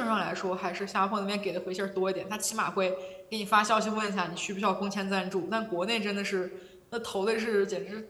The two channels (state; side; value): identical; both; correlation 1.00